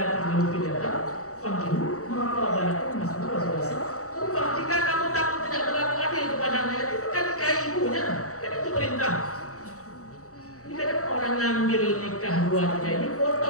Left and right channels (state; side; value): late; right; 0.65 ms